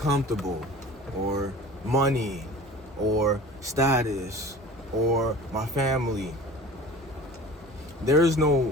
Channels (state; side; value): normal; both; correlation 0.41